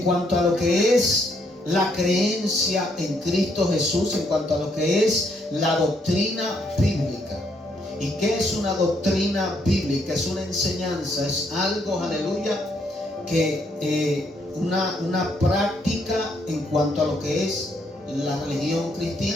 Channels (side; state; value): both; normal; correlation 0.72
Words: cuanto a lo que es la creencia en Cristo Jesús, en cuanto a lo que es la doctrina bíblica. ¿Y qué es una doctrina bíblica? Es una enseñanza, es algo, aleluya, que una práctica en cuanto a lo que es la religión